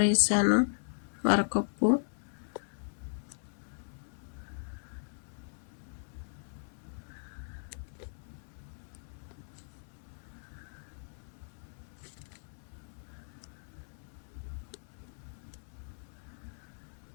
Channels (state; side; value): silent; right; digital silence